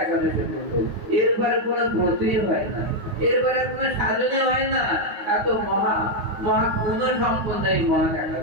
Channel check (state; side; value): late; left; 9.5 ms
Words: একাদশী ব্রত। এরপরে কোনো ব্রতই হয় না, এরপরে কোনো সাধনে হয় না। এত মহা গুণ সম্পন্ন এই মহা